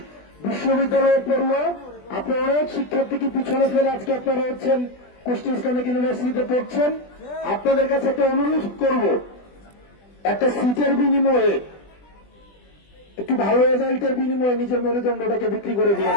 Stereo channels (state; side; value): late; right; 20 ms